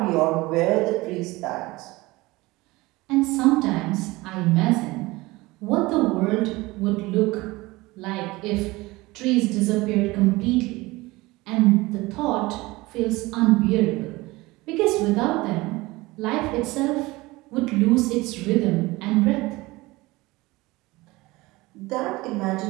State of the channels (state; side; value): quieter; left; 21.1 dB